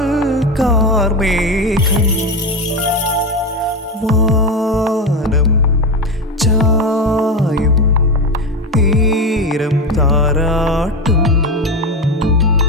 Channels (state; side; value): normal; both; correlation 0.17